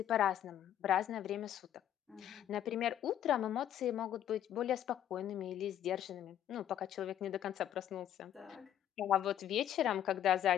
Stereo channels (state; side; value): quieter; right; 10.9 dB